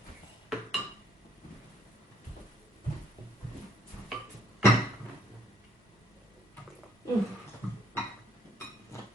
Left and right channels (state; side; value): normal; both; correlation 0.67